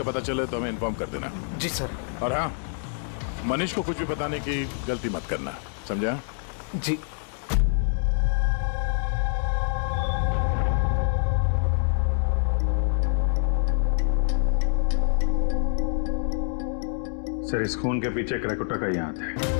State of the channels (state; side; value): silent; right; 61 dB below the other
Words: पता चले तो हमें इन्फॉर्म कर देना। जी सर। और हाँ, मनीष को कुछ भी बताने की गलती मत करना, समझा? जी। सर इस खून के पीछे क्रैकोटा का ही हाथ है